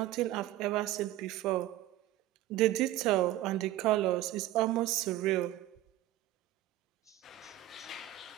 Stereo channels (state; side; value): quieter; left; 14.8 dB